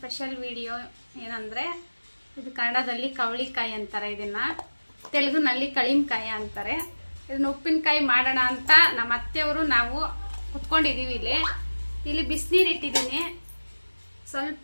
video ಏನಂದರೆ ಇದು ಕನ್ನಡದಲ್ಲಿ ಕವಳಿಕಾಯಿ ಅಂತಾರೆ, ಇದನ್ನು ತೆಲುಗಿನಲ್ಲಿ ಕಳಿಂಕಾಯಿ ಅಂತಾರೆ. ಇದನ್ನು ಉಪ್ಪಿನಕಾಯಿ ಮಾಡೋಣ ಅಂತ ನಮ್ಮ ಅತ್ತೆಯವರು ನಾವು ಕುತ್ಕೊಂಡಿದ್ದೀವಿ. ಇಲ್ಲಿ ಬಿಸಿನೀರು ಇಟ್ಟಿದ್ದೀನಿ.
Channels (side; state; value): both; inverted; correlation -1.00